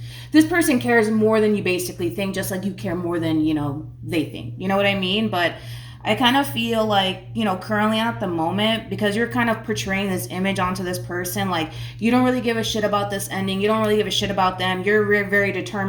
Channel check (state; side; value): identical; both; correlation 1.00